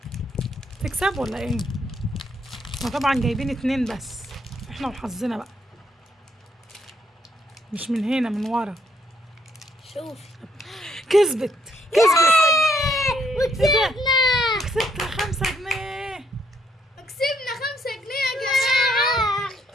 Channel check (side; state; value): both; normal; correlation 0.71